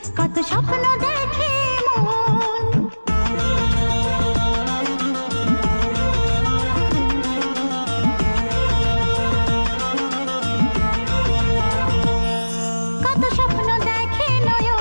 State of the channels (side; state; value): both; inverted; correlation -1.00